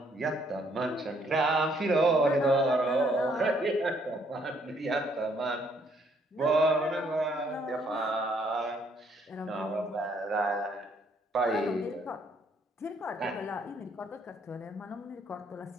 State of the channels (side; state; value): both; normal; correlation 0.68